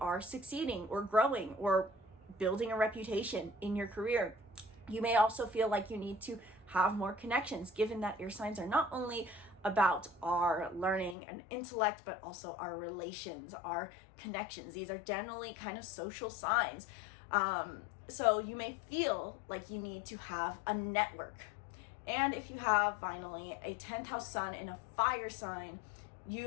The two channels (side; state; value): right; drops out; at 11.2 s